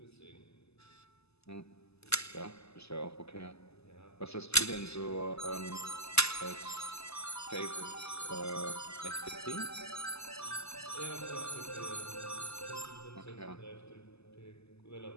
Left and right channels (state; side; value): late; right; 0.79 ms